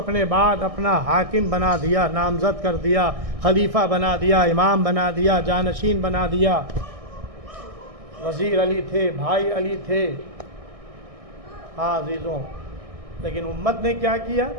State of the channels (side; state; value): left; late; 1.6 ms